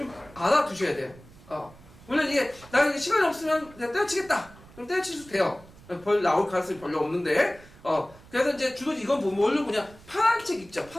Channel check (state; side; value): noise; right; rumble, 22 dB below the sound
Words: 알아두셔야 돼요. 물론 이게 나 이게 시간이 없으면 내가 때려치겠다. 그럼 때려칠 수도 돼요. 나올 가능성이 별로 없는데. 그래서 이제 주로 이건 뭘로 보냐? 파란 책 있죠.